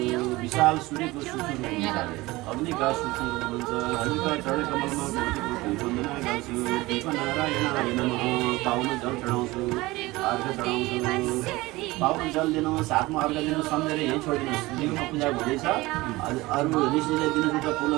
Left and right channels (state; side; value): quieter; left; 20.5 dB